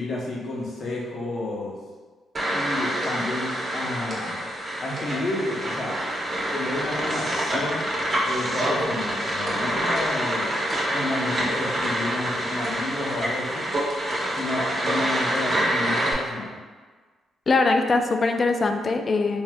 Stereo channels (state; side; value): normal; both; correlation 0.81